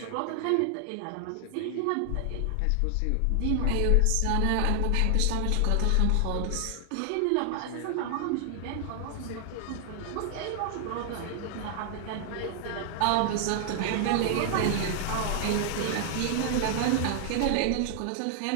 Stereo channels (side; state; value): both; different; correlation 0.00